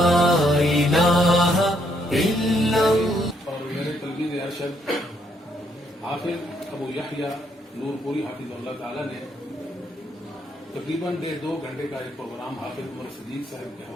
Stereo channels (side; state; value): both; normal; correlation 0.72